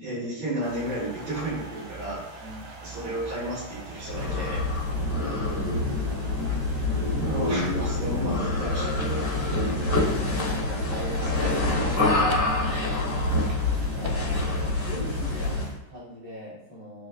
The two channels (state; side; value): late; left; 13 ms